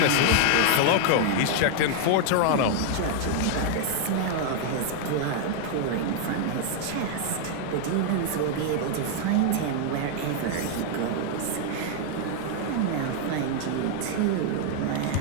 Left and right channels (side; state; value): both; different; correlation 0.00